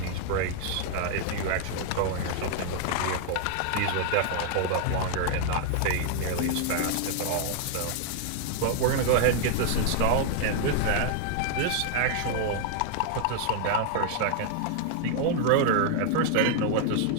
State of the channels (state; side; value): different; both; correlation 0.00